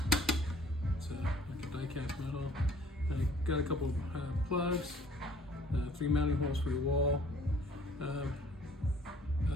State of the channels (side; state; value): both; normal; correlation 0.55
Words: It's like a die-cast metal. Got a couple plugs. 3 mounting holes for your wall.